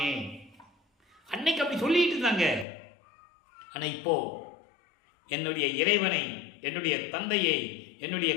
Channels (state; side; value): drops out; right; at 2.7 s